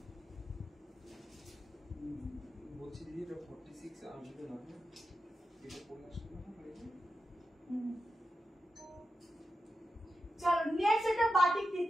বলছি দিদি এটা 46 আসবে না, এটা পড়ে আসবে না। চলো নেক্সট একটা বাটিক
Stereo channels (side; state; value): both; normal; correlation 0.90